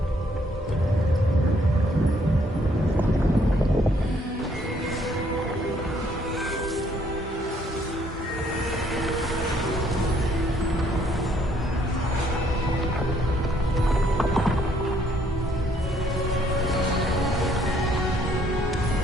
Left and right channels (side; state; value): both; normal; correlation 0.66